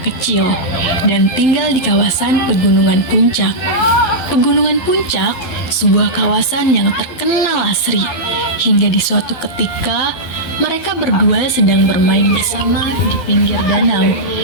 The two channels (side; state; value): right; late; 12 ms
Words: dan tinggal di kawasan Pegunungan Puncak. Pegunungan Puncak, sebuah kawasan yang terkenal asri. Hingga di suatu ketika, mereka berdua sedang bermain bersama di pinggir danau,